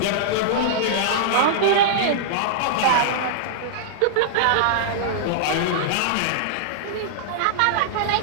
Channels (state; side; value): different; both; correlation -0.02